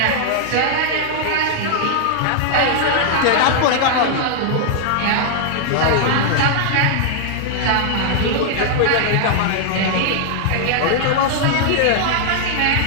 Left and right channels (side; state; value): both; different; correlation -0.01